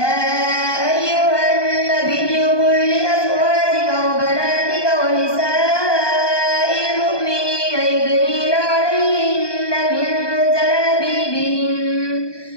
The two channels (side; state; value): right; late; 1.2 ms